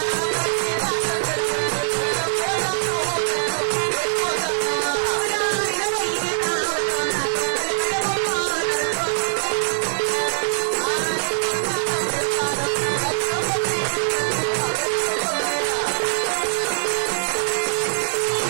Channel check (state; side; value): silent; left; digital silence